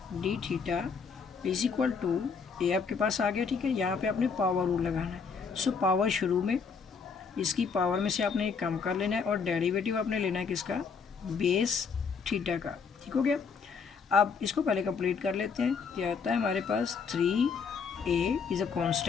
D theta is equal to A आपके पास आ गया। ठीक है, यहाँ पे आपने पावर रूल लगाना है। सो पावर शुरू में इसकी पावर में से आपने एक कम कर लेना है, और डेरिवेटिव आपने लेना है किसका, बेस थीटा का। ठीक हो गया। अब इसको पहले कंप्लीट कर लेते हैं। क्या आता है हमारे पास 3a is a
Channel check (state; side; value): quieter; right; 5.6 dB